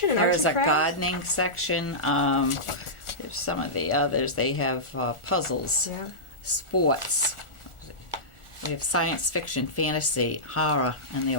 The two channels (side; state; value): right; late; 1.4 ms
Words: and There arts is and a crafts. gardening section. There's some of the others. They have puzzles, Yeah. sports. We have science fiction, fantasy, horror, and the